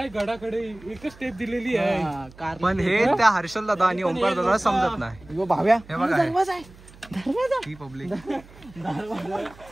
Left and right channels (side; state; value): right; noise; hum, 22 dB below the sound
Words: गडाकडे एकच स्टेप दिलेली आहे पण हे त्या हर्षल दादा आणि ओंकार दादा समजत नाही. भाव्या हे बघा ही पब्लिक